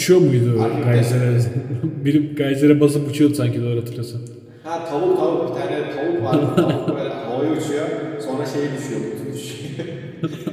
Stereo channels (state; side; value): identical; both; correlation 1.00